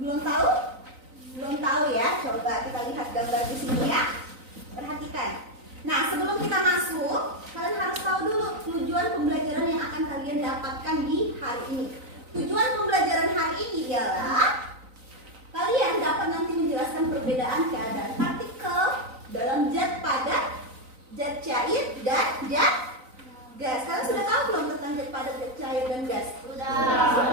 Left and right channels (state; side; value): late; left; 3.9 ms